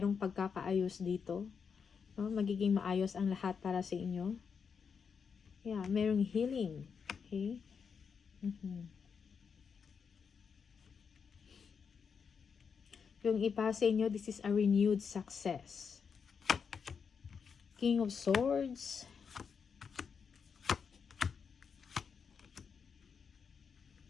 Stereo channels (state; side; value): quieter; right; 6.2 dB